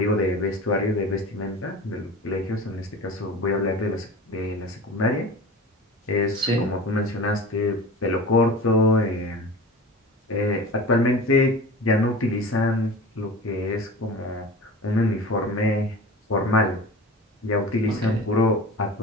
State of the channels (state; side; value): normal; both; correlation 0.35